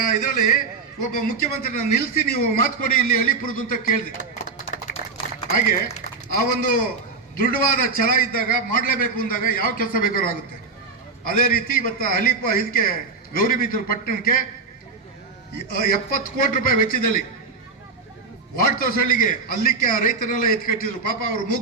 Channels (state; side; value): quieter; left; 4.4 dB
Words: ಇದರಲ್ಲಿ ಒಬ್ಬ ಮುಖ್ಯಮಂತ್ರಿನ ನಿಲ್ಲಿಸಿ ನೀವು ಮಾತು ಕೊಡಿ ಇಲ್ಲಿ ಅಳಿಪುರದು ಅಂತ ಕೇಳಿದೆ. ಹಾಗೆ ಆ ಒಂದು ದೃಢವಾದ ಛಲ ಇದ್ದಾಗ ಮಾಡಲೇಬೇಕು ಅಂದಾಗ ಯಾವ ಕೆಲಸ ಬೇಕಾದ್ರೂ ಆಗುತ್ತೆ. ಅದೇ ರೀತಿ ಇವತ್ತು ಇದಕ್ಕೆ ಗೌರಿಬಿದೂರು ಪಟ್ಟಣಕ್ಕೆ 70 ಕೋಟಿ ರೂಪಾಯಿ ವೆಚ್ಚದಲ್ಲಿ ವಾರ್ಡ್ ತೋಸಳ್ಳಿಗೆ ಅಲ್ಲಿಕ್ಕೆ ಆ ರೈತರೆಲ್ಲ ಎತ್ಕಟ್ಟಿದ್ರು. ಪಾಪ ಅವ್ರು